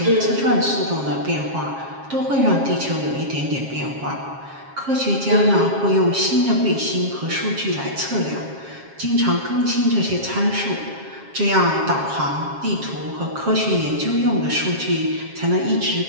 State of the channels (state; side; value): late; left; 7.4 ms